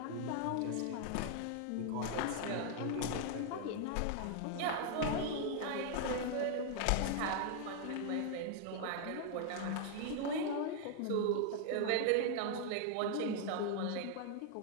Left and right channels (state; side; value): different; both; correlation 0.00